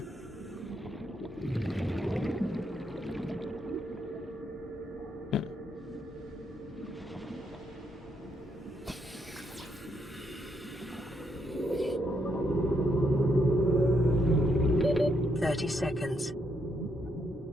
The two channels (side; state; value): both; normal; correlation 0.76